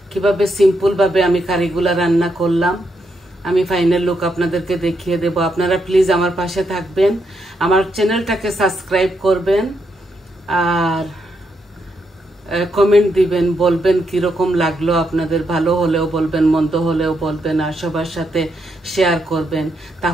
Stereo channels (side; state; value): both; normal; correlation 0.80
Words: কিভাবে সিম্পল ভাবে আমি কারিগুলা রান্না করলাম। আমি ফাইনাল লুক আপনাদেরকে দেখিয়ে দেব। আপনারা প্লিজ আমার পাশে থাকবেন, আমার চ্যানেলটাকে সাবস্ক্রাইব করবেন, আর কমেন্ট দিবেন, বলবেন কিরকম লাগলো আপনাদের। ভালো হলেও বলবেন, মন্দ হলেও বলবেন, আর সবার সাথে শেয়ার করবেন।